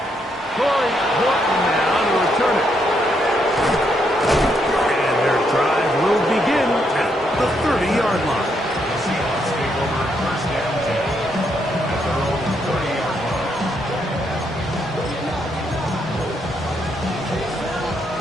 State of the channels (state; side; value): normal; both; correlation 0.76